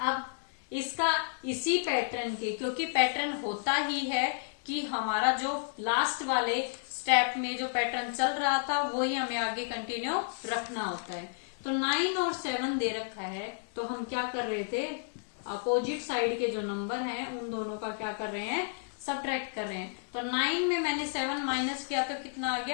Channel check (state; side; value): silent; right; digital silence